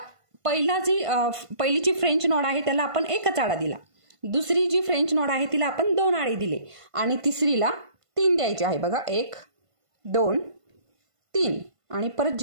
पहिलीची फ्रेंच नॉड आहे त्याला आपण 1च आडा दिला. दुसरी जी फ्रेंच नॉड आहे तिला आपण 2 आडे दिले आणि तिसरीला 3 द्यायचे आहे बघा. 1, 2, 3 आणि परत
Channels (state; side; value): late; left; 1.5 ms